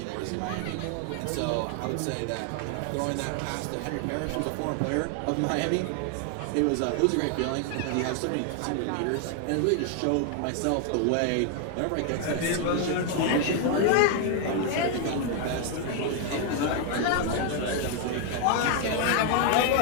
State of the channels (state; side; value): different; both; correlation 0.00